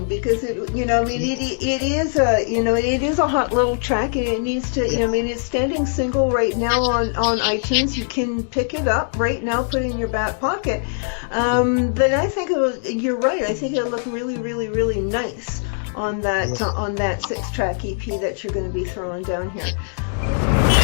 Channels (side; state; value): right; silent; digital silence